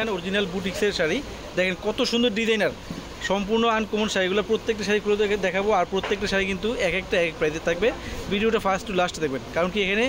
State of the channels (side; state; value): both; identical; correlation 1.00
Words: অরিজিনাল বুটিক্সের শাড়ি। দেখেন কত সুন্দর ডিজাইনার, সম্পূর্ণ আনকমন শাড়িগুলো। প্রত্যেকটা শাড়ি খুলে দেখাবো, আর প্রত্যেকটা শাড়ি কিন্তু এক একটা এক প্রাইসে থাকবে। ভিডিওটা ফার্স্ট টু লাস্ট দেখবেন, কারণ কি এখানে